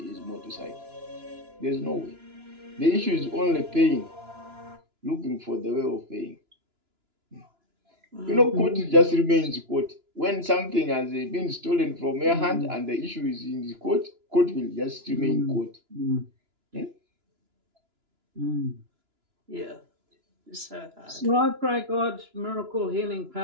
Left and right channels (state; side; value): late; left; 2.9 ms